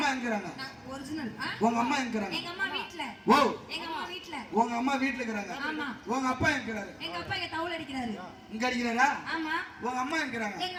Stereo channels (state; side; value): identical; both; correlation 1.00